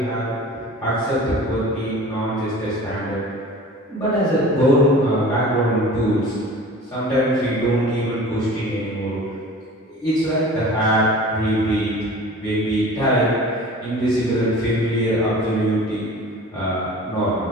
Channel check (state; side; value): normal; both; correlation 0.41